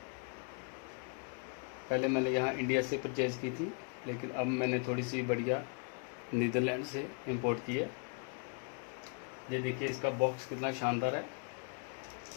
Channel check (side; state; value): right; quieter; 37.6 dB